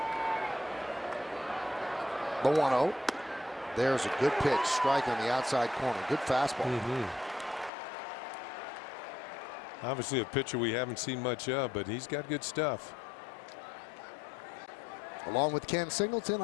The 1-0. There's a good pitch. Strike on the outside corner. Good fastball. Obviously a pitcher we haven't seen much of, but he's got good stuff. Along with Ken Singleton,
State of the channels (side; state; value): right; drops out; at 7.7 s